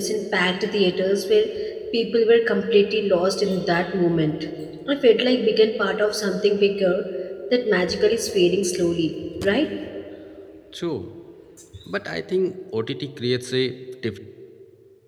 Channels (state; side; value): identical; both; correlation 1.00